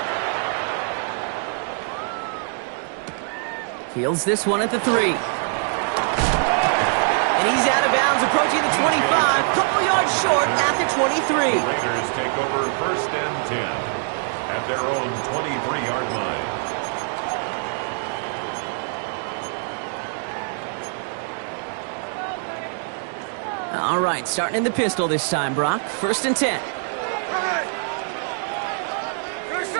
Fields this one at the 3. And he's out of bounds, approaching the 25. Couple yards short at the 23. The Raiders take over 1st and 10 at their own 23-yard line. All right, starting in the pistol this time, Brock. 1st and 10.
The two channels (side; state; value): left; silent; 61 dB below the other